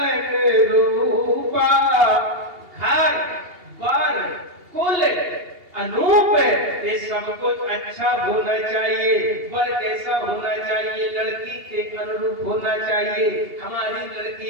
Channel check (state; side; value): late; left; 2.8 ms